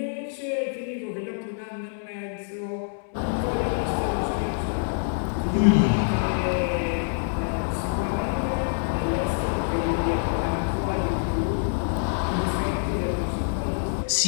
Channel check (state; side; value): silent; right; 61 dB below the other